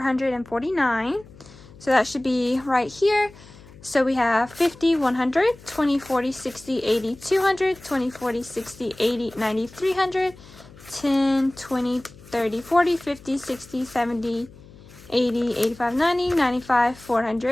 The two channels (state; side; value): noise; left; hum, 21 dB below the sound